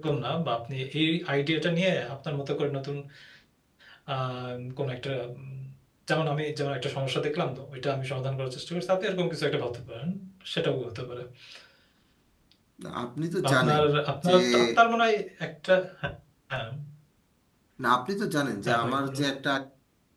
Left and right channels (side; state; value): both; identical; correlation 1.00